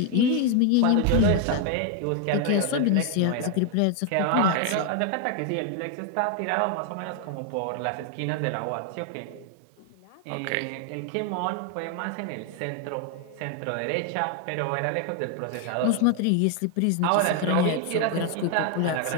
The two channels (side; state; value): both; different; correlation 0.01